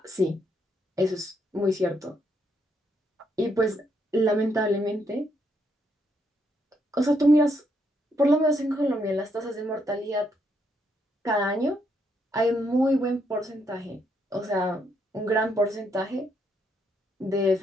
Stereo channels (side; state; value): both; normal; correlation 0.75